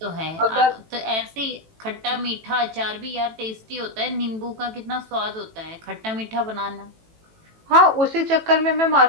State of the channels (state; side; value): late; left; 18 ms